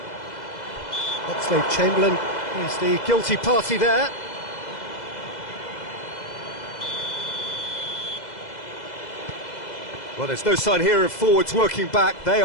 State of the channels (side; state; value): right; late; 2.0 ms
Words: Oxlade-Chamberlain is the guilty party there. Well, there's no sign here of forwards working back. They